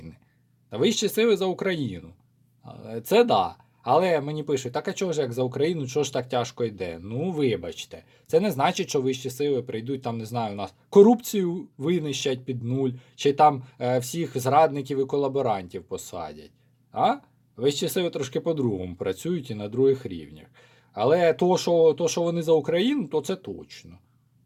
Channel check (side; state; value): both; identical; correlation 1.00